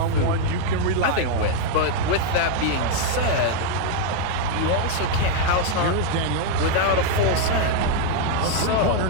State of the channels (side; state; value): both; different; correlation 0.00